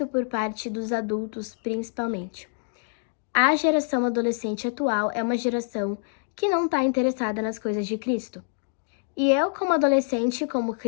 por parte dos adultos, principalmente. A geração adolescente atual é uma geração que não está interessada nas coisas de Cristo. E eu, como adolescente, como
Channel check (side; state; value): right; silent; digital silence